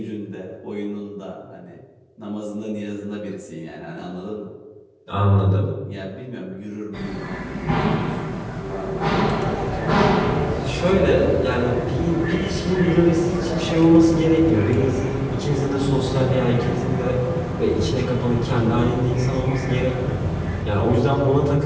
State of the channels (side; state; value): both; identical; correlation 1.00